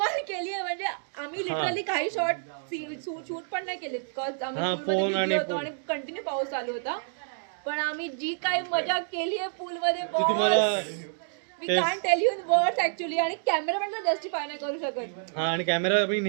म्हणजे आम्ही लिटरली काही शॉट शूट पण नाही केले. हा, फोन आणि आणि कंटिन्यू पाऊस चालू होता. पण आम्ही जी काही मजा केली आहे पूल मध्ये ती तुम्हाला मी can tell you in words actually. आणि कॅमेरा पण जस्टिफाय नाही करू शकत. हा, आणि कॅमेरा आम्ही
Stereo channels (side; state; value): left; silent; digital silence